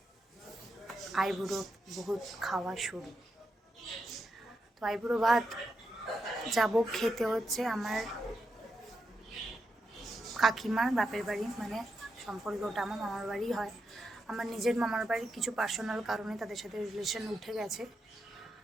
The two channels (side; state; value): both; normal; correlation 0.85